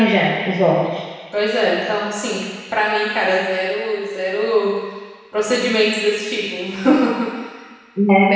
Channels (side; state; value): both; identical; correlation 1.00